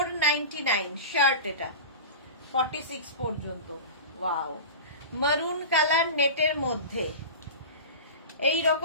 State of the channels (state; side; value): inverted; both; correlation -0.30